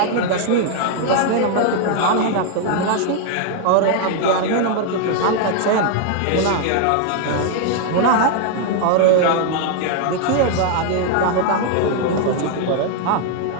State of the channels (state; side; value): different; both; correlation 0.00